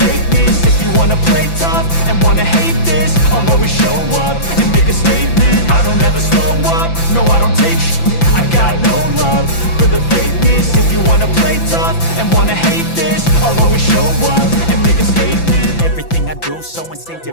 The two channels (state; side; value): late; right; 5.9 ms